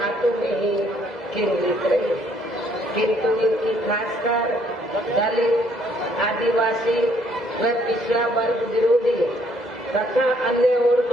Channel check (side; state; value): both; normal; correlation 0.66